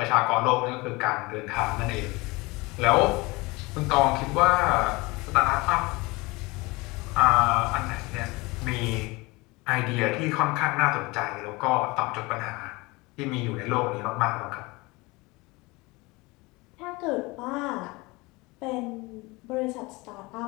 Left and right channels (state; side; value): quieter; right; 23.9 dB